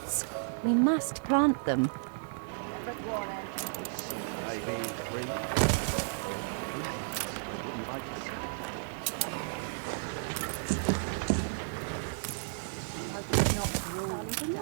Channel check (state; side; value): silent; left; digital silence